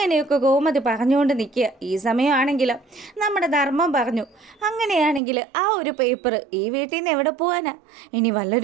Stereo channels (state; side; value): drops out; left; at 5.2 s